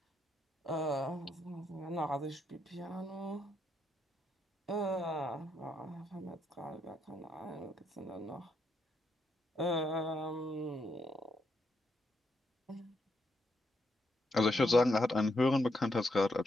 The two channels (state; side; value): normal; both; correlation 0.78